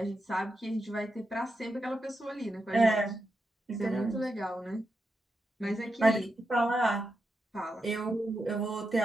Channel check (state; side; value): normal; both; correlation 0.87